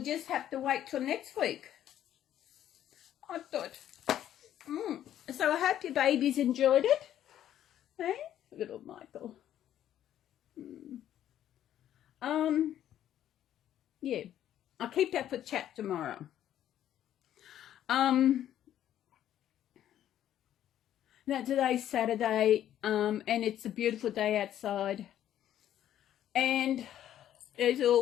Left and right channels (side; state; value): right; quieter; 11.3 dB